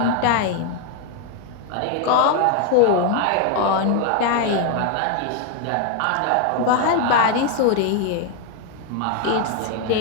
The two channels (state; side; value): different; both; correlation 0.01